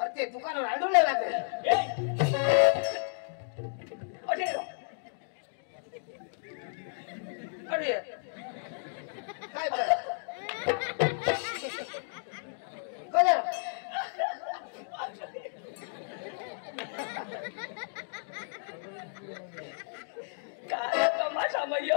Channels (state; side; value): silent; right; digital silence